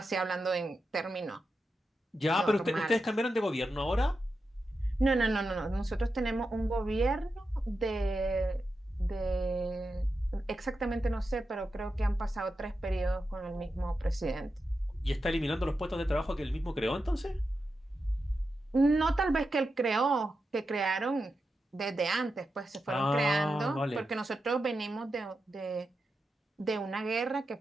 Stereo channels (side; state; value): both; normal; correlation 0.89